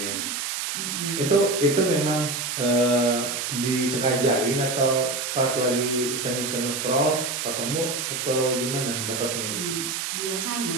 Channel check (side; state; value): right; noise; hiss, 3 dB below the sound